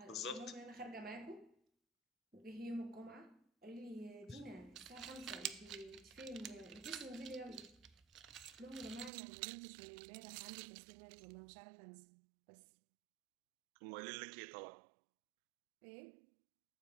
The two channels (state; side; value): drops out; left; at 9.1 s